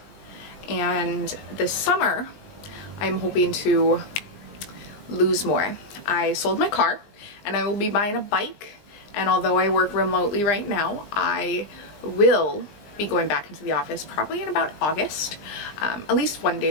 and this summer I'm hoping to lose more. I sold my car and I will be buying a bike, and although I work remotely right now, I will be going back into the office probably in about August, at least 1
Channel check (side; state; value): right; late; 20 ms